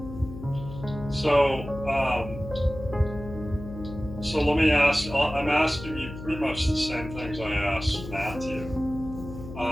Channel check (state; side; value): noise; left; hum, 12 dB below the sound